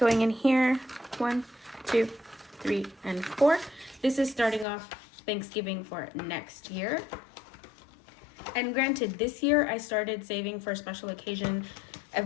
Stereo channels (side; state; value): right; drops out; at 4.7 s